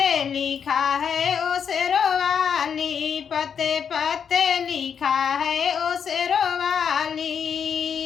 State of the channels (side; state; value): right; quieter; 7.3 dB